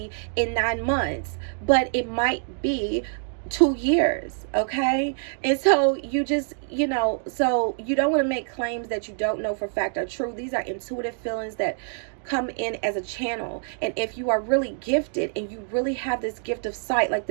in 9 months, but it might be 2 years. Okay. And so you just, you know, so you don't want to make claims that you don't know for fact are true. These are intuitive feelings that come in as a channel. And if you are really gifted and you really have this gift of sight, like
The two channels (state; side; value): silent; left; digital silence